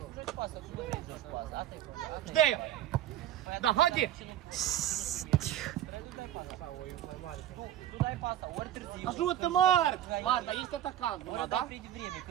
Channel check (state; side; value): quieter; left; 12.1 dB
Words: joci pasă și nu vrei să joci pasă. Asta e problema. Știi? Da, haide! Tu dai pasa, ori târziu. Ajută, Marc! Marc, dar este atacant numai, da? Ori de vreme,